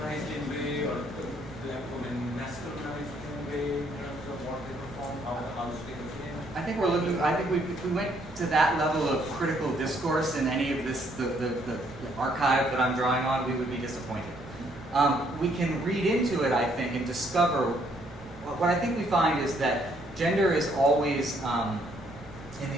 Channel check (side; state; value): both; normal; correlation 0.68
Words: in a way, or the black women masculinized in a way in terms of what they perform, how the house they came? I think if we went to that level of critical discourse in any of this, the archive that I'm drawing on, we would be disappointed. We can read into it, I think, and discover, what I think we find is that gender is always,